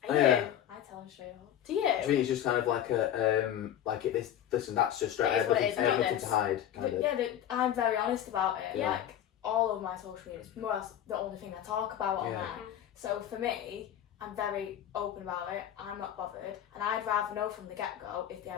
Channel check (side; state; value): right; quieter; 10.8 dB